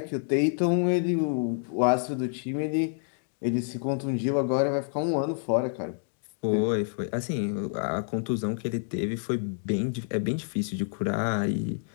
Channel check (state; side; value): silent; right; digital silence